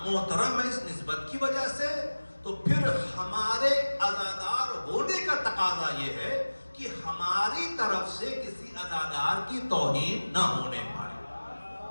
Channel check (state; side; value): inverted; both; correlation -1.00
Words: محترم ہے اس نسبت کی وجہ سے، تو پھر ہمارے عزادار ہونے کا تقاضا یہ ہے کہ ہماری طرف سے کسی عزادار کی توہین نہ ہونے پائے.